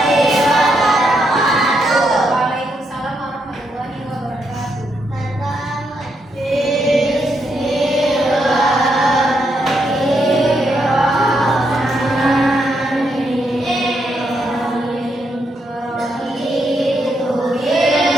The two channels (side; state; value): both; normal; correlation 0.79